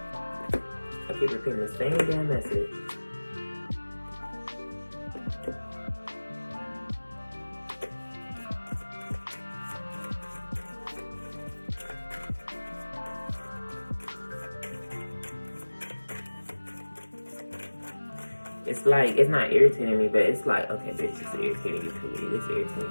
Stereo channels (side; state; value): both; inverted; correlation -1.00